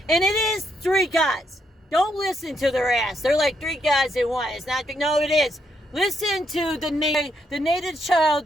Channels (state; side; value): normal; both; correlation 0.77